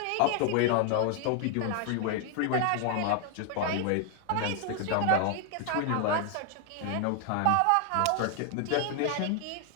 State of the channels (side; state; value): both; different; correlation 0.00